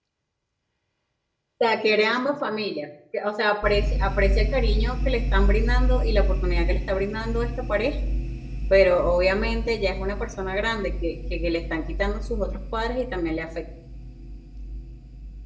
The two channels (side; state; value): both; identical; correlation 1.00